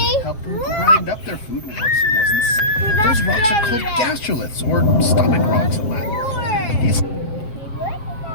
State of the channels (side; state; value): right; late; 7.5 ms